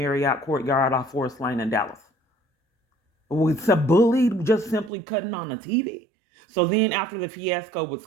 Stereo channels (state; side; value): drops out; left; at 4.9 s